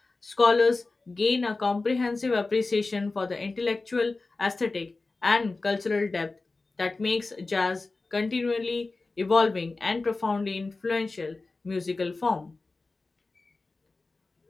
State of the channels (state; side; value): quieter; right; 3.5 dB